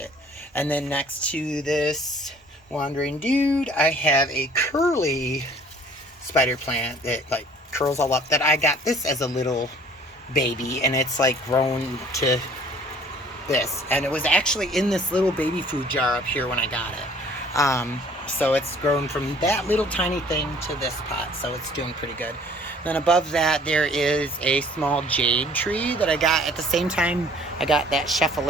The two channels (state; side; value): normal; both; correlation 0.54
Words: And then next to this wandering dude, I have a curly spider plant that like curls all up, that I got this as a little baby, and it's like grown to this, and it was actually in this little baby food jar up here when I got it. So it's grown from that little tiny thing to this pot, so it's doing pretty good. Then above that, there is a small jade tree that I got at the same time I got that